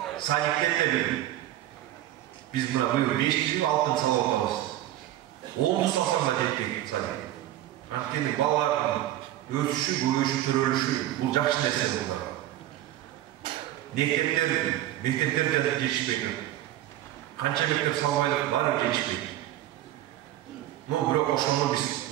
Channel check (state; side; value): quieter; left; 13.7 dB